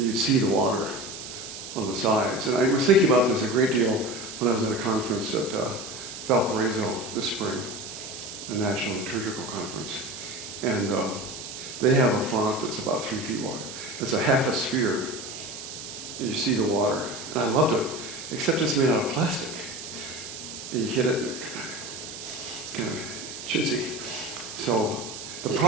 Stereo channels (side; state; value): right; noise; hiss, 10 dB below the sound